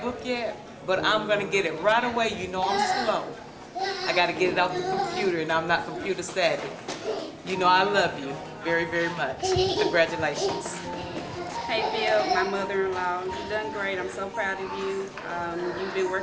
book yet, but I'm gonna get it right away. You know I'm slow. I gotta get it off the computer, and I'm not computer savvy. You know I love you very, very much. Congratulations. Hey Phil, my mother-in-law, you've done great. I'm so proud of you. You've been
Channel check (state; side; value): identical; both; correlation 1.00